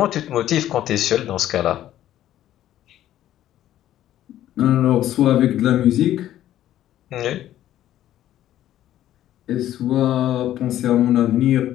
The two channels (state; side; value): quieter; right; 12.6 dB